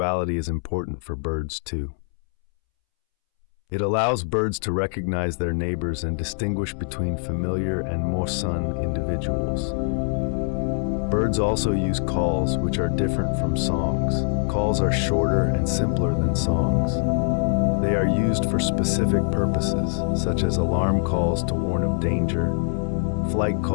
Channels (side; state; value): right; silent; 63 dB below the other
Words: is important for birds too. It allows birds to recognize their neighbors and distinguish between familiar and mosun individuals. Birds also use calls, which are different from songs. Calls are shorter and simpler than songs. They are used for specific purposes, such as alarm calls to warn of danger, flight